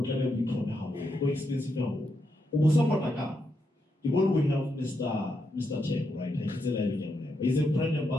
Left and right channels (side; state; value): both; normal; correlation 0.82